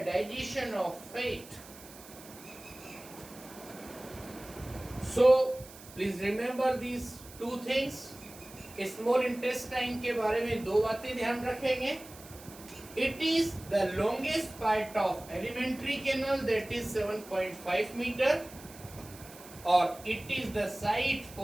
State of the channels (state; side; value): noise; right; hiss, 18 dB below the sound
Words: digestion of fat. So please remember these two things. Small intestine के बारे में दो बातें ध्यान रखेंगे. It is the longest part of alimentary canal, that is 7.5 metre, और it is the site